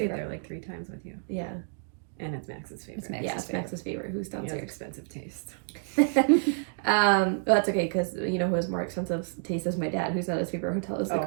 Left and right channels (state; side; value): silent; left; digital silence